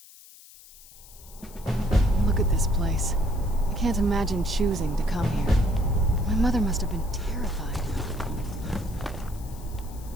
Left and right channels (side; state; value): left; noise; hiss, 21 dB below the sound